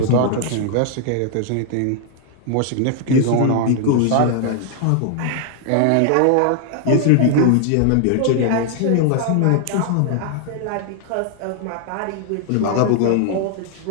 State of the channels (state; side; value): different; both; correlation 0.00